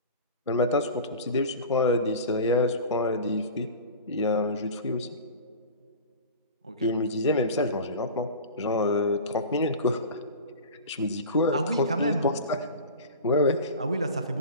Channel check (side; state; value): both; inverted; correlation -0.34